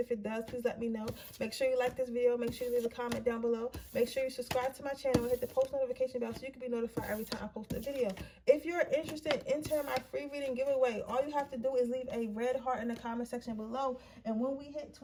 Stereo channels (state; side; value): identical; both; correlation 1.00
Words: it does, please let me know. Make sure you like this video. Make sure you leave a comment down below. Make sure you subscribe to my channel and hit the post notification bell so you can be notified every time I post a video. If you're interested in entering my free reading giveaway, all you have to do is leave a red heart in the comment section below. And when we hit